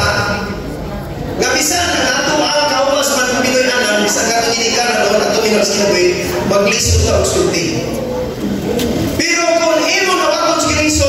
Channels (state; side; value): identical; both; correlation 1.00